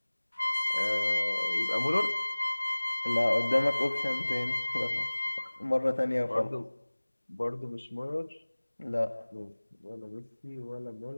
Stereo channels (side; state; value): both; inverted; correlation -1.00